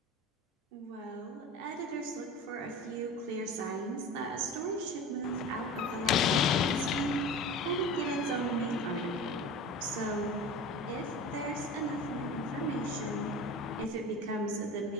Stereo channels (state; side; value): normal; both; correlation 0.34